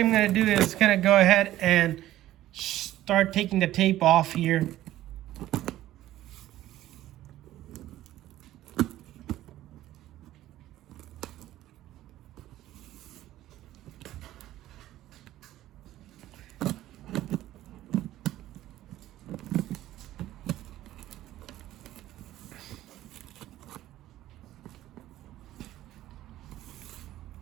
I'm gonna do is kind of go ahead and start taking the tape off here.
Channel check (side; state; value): left; quieter; 14.2 dB